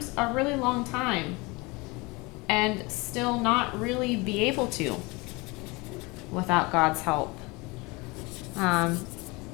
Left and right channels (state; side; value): quieter; right; 25.6 dB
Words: a really long time and still not really be able to without God's help.